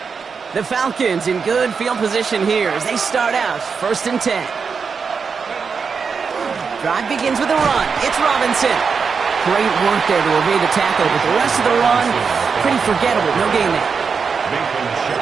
The Falcons in good field position here as they start out 1st and 10. Drive begins with a run. It's Robinson. Great work there to evade the tackle, but the rest of the run, pretty forgettable. No gain there.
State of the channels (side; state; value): left; quieter; 5.6 dB